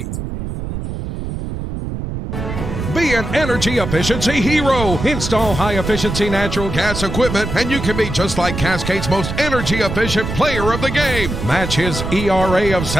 Be an energy efficiency hero. Install high-efficiency natural gas equipment, and you can be just like Cascade's most energy-efficient player of the game. Match his ERA of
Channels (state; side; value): noise; right; rumble, 5 dB below the sound